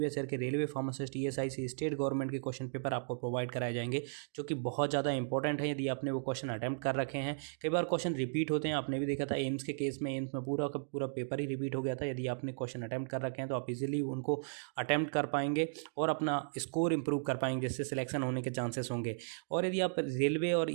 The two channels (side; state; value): left; silent; digital silence